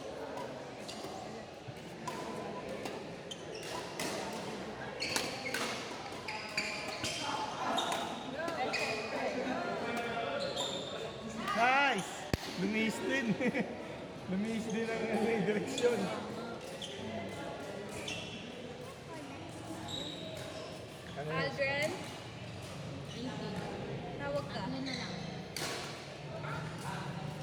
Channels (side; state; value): both; identical; correlation 1.00